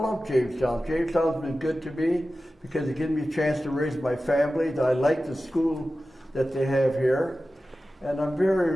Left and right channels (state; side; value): normal; both; correlation 0.94